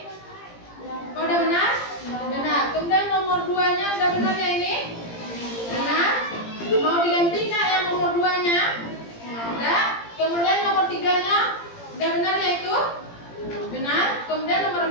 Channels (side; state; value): right; late; 17 ms